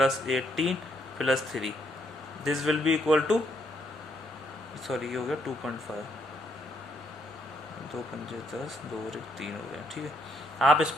18 plus 3, this will be equal to, sorry ये हो गया 2.5, 2 5 10 2 और 1 3 हो गया, ठीक है। आप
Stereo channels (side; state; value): both; normal; correlation 0.73